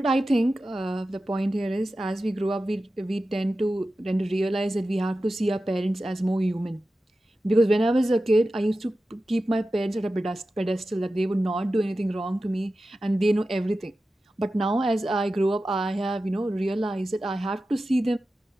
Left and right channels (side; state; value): both; normal; correlation 0.93